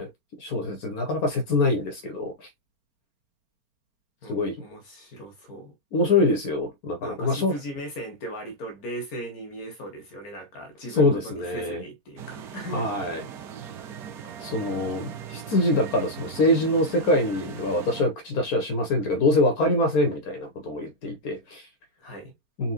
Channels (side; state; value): right; late; 4.4 ms